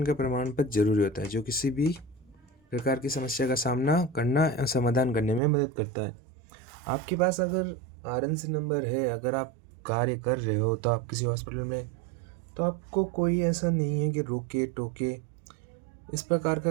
का प्रमाण पत्र जरूरी होता है जो किसी भी प्रकार की समस्या का सामना करना या समाधान करने में मदद करता है। आपके पास अगर RNC नंबर है, अगर आप कार्य कर रहे हो तो आप किसी हॉस्पिटल में, तो आपको कोई ऐसा नहीं है कि रोके टोके, इस प्रकार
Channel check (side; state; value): left; drops out; at 5.4 s